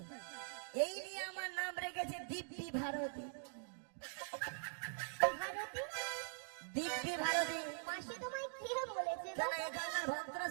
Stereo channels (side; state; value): left; silent; digital silence